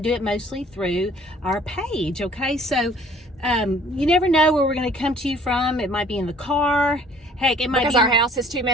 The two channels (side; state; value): both; normal; correlation 0.55